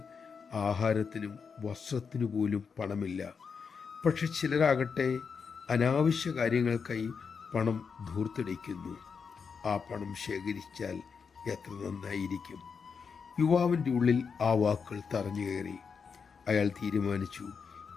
ആഹാരത്തിനും വസ്ത്രത്തിനു പോലും പണമില്ല. പക്ഷെ ചിലരാകട്ടെ അനാവശ്യ കാര്യങ്ങൾക്കായി പണം ധൂർത്തടിക്കുന്നു. ആ പണം ശേഖരിച്ചാൽ എത്ര നന്നായിരിക്കും. യുവാവിൻ്റെ ഉള്ളിൽ ആ വാക്കുകൾ തറഞ്ഞു കയറി. അയാൾ തീരുമാനിച്ചു,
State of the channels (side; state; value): right; quieter; 5.9 dB